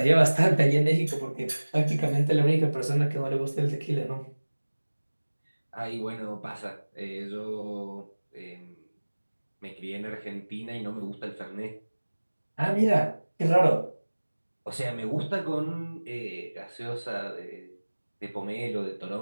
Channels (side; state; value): both; inverted; correlation -1.00